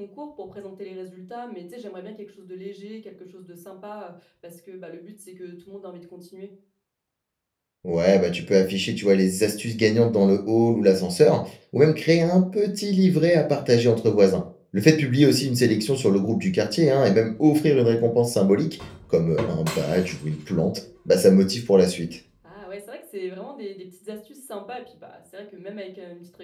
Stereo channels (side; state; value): both; identical; correlation 1.00